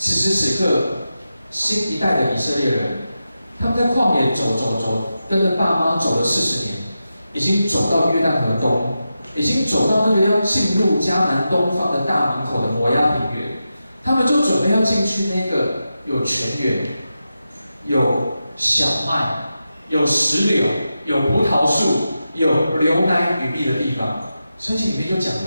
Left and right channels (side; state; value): both; inverted; correlation -0.90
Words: 时此刻，新一代的以色列人，他们在旷野走，跟着爸妈走了40年，已经走到约旦河东，已经走到那个要进入迦南东方的大门口的摩押平原，他们就准备要进去那个有泉源、有小麦、有石榴、有葡萄树、有流奶与蜜的地方。圣经里面就讲有